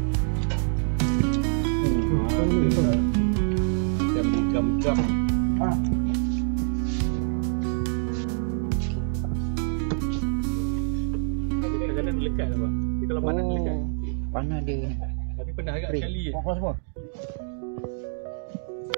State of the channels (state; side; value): silent; left; digital silence